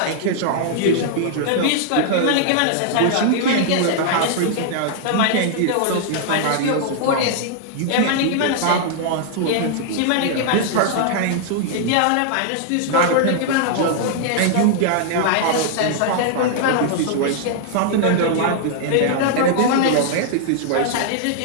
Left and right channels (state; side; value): different; both; correlation -0.01